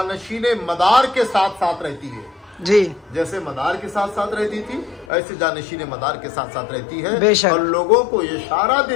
मदार के साथ साथ रहती है, जी, जैसे मदार के साथ साथ रहती थी, ऐसे जानशीने मदार के साथ साथ रहती है, बेशक। और लोगों को ये इशारा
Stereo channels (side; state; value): right; drops out; at 5.1 s